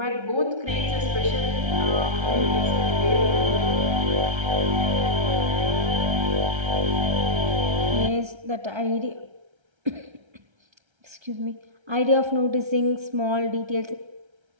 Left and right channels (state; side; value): late; left; 1.3 ms